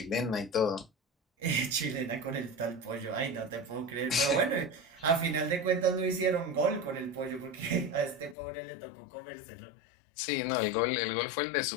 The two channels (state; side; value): drops out; right; at 8.3 s